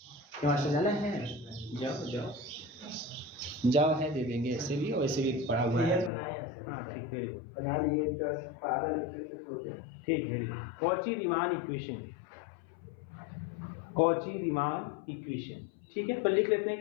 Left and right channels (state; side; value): drops out; right; at 6.1 s